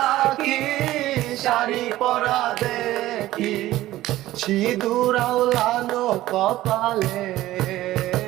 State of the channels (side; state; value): left; quieter; 15.6 dB